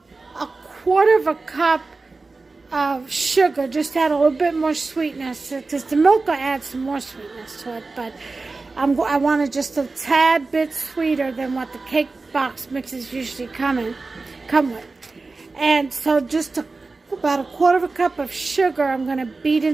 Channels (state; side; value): quieter; left; 3.7 dB